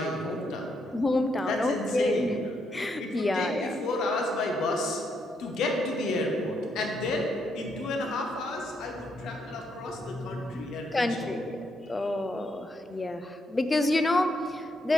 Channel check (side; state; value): both; normal; correlation 0.77